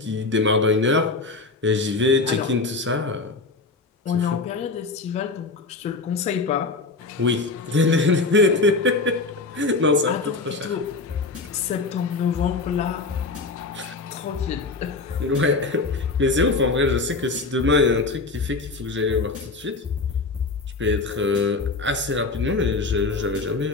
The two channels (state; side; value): quieter; right; 3.8 dB